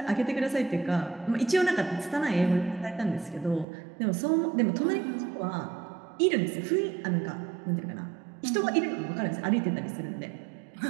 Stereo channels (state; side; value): drops out; left; at 3.7 s